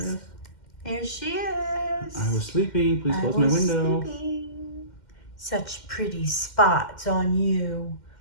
There she is. I was sleeping. Please close my window. Sleeping. Such pretty spots on you.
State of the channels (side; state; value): right; late; 2.1 ms